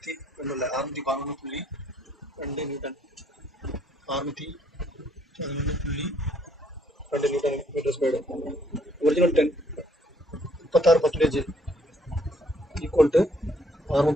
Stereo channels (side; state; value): both; normal; correlation 0.66